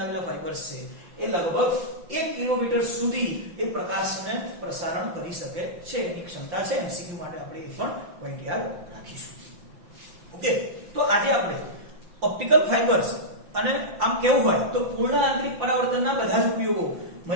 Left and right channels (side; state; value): left; late; 5.8 ms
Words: ફાઇબર્સ છે એ લગભગ 1 કિલોમીટર સુધી એ પ્રકાશને પ્રસારણ કરી શકે છે. એની ક્ષમતા છે. એમસીક્યુ માટે આપણે એ પણ પોઈન્ટ યાદ રાખીશું. ઓકે, તો આજે આપણે ઓપ્ટિકલ ફાઇબર્સ અને આમ કેવું હોય તો પૂર્ણ આંતરિક પરાવર્તનના બધા જ ઉપયોગો